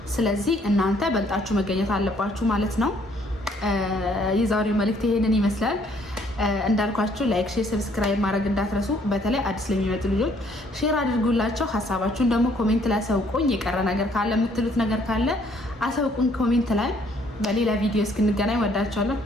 ስለዚህ እናንተ በልጣችሁ መገኘት አለባችሁ ማለት ነው። የዛሬው መልእክት ይሄንን ይመስላል። እንዳልኳችሁ ላይክ፣ ሼር፣ ሰብስክራይብ ማድረግ እንዳትረሱ። በተለይ አዲስ ለሚመጡ ልጆች ሼር አድርጉላቸው። ሀሳባችሁን ደግሞ ኮሜንት ላይ አሳውቁኝ። የቀረ ነገር ካለ የምትሉት ነገር ካለ አሳውቁኝ ኮሜንት ላይ። በሌላ ቪዲዮ እስክንገናኝ ወዳችኋለሁ።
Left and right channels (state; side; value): normal; both; correlation 0.64